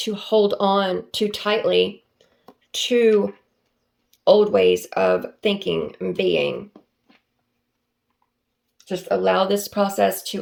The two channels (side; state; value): both; identical; correlation 1.00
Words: hold on too tightly to old ways of thinking and being. Just allow this process